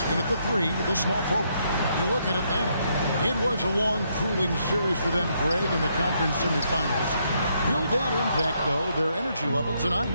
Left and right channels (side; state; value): both; inverted; correlation -0.75